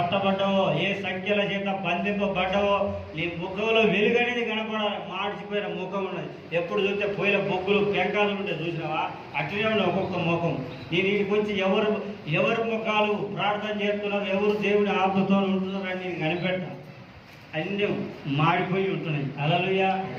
ఏ సంఖ్యల చేత బంధింపబడ్డావో, నీ ముఖంలో వెలుగు అనేది కనపడాలి. మార్చిపోయిన ముఖం ఉన్నది, ఎప్పుడు చూస్తే పోయిన బొగ్గులు పెంకాలు ఉంటాయి, చూసినావా? అట్లనే ఉన్నాయి ఒక్కొక్క ముఖం. నేను ఇంటికి వచ్చి ఎవరు ముఖాలు ప్రార్థన చేస్తున్నారు, ఎవరు దేవుని ఆత్మతో ఉంటున్నారు అని నేను కనిపెట్ట. అన్నీ మాడిపోయి ఉంటున్నాయి. హల్లెలూయా.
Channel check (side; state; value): both; identical; correlation 1.00